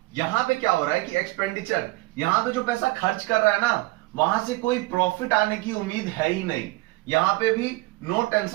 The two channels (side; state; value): left; quieter; 21.6 dB